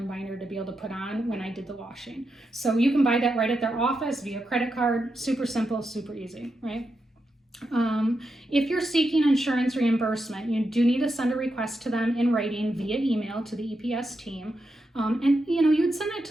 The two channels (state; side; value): normal; both; correlation 0.86